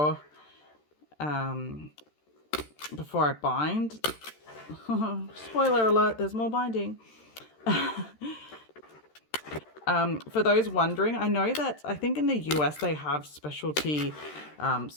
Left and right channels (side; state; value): right; late; 13 ms